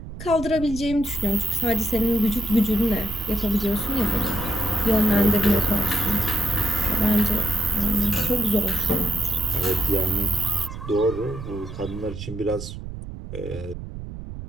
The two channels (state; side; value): noise; right; rumble, 10 dB below the sound